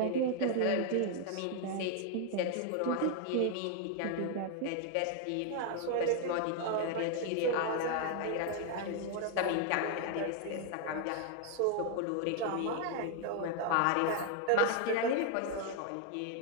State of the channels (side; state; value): both; different; correlation 0.00